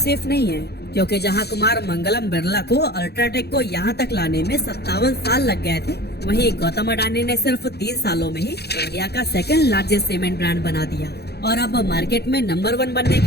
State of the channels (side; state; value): right; late; 0.48 ms